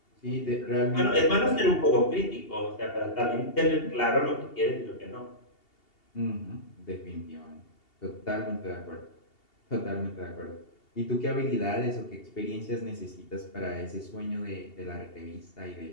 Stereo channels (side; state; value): right; late; 2.8 ms